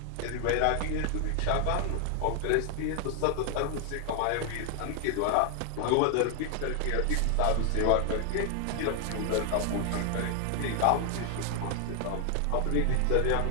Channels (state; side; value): different; both; correlation 0.00